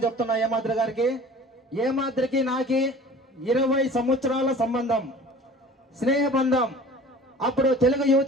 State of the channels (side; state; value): both; normal; correlation 0.44